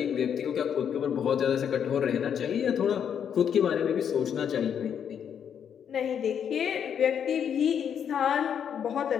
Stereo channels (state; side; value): quieter; right; 8.2 dB